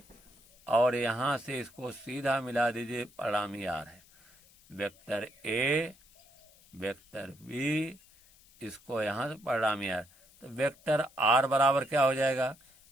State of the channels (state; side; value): noise; left; hiss, 27 dB below the sound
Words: और यहाँ से इसको सीधा मिला दीजिए, परिणामी आर है, वेक्टर ए वेक्टर बी, इसको यहाँ से परिणामी आर। तो वेक्टर आर बराबर क्या हो जाएगा,